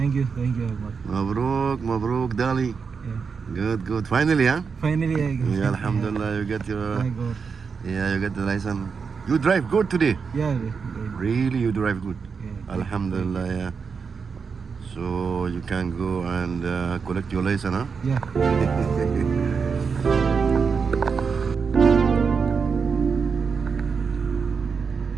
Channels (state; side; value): quieter; left; 5.6 dB